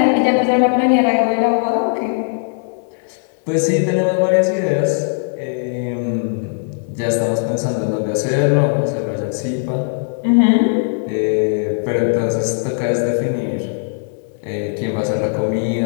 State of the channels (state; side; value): silent; right; 67 dB below the other